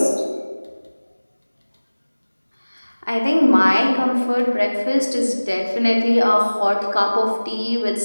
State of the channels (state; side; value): inverted; both; correlation -1.00